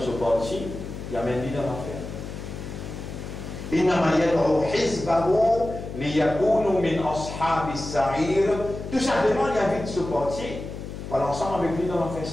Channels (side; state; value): left; noise; hum, 9 dB below the sound